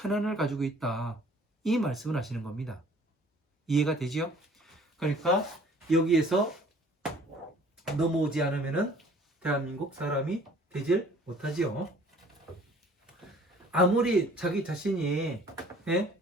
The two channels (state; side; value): normal; both; correlation 0.53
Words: 가지고 있다. 이 말씀을 하시는 겁니다. 이해가 되지요? 그러니까 여기에서 넘어오지 않으면은 대한민국 사람이 되질 못하지요. 아무리 자기 자신이